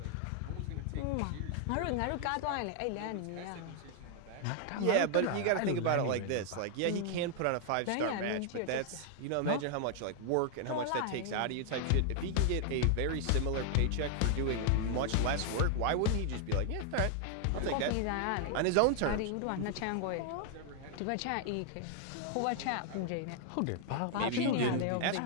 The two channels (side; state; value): both; different; correlation 0.00